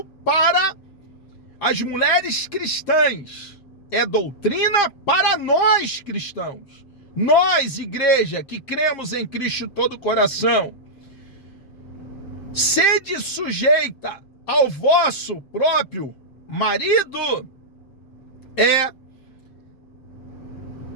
para as mulheres cristãs, é doutrina para nós cristãos. Nós, igreja, que cremos em Cristo de todo o coração, sede sujeita ao vosso próprio marido, é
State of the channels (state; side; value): late; right; 7.5 ms